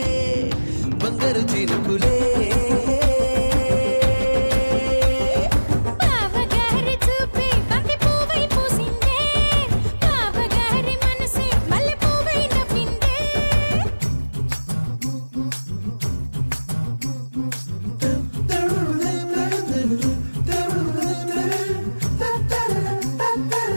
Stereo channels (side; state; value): both; inverted; correlation -1.00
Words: బంగారు చినుకులే బావగారి చూపే బంతి పువ్వై పూసిందే బావగారి మనసే మల్లె పువ్వై నవ్విందే